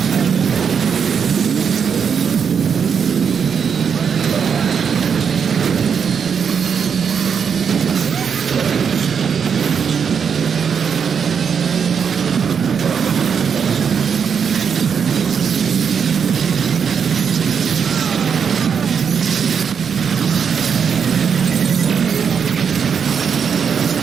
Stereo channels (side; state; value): left; quieter; 6.8 dB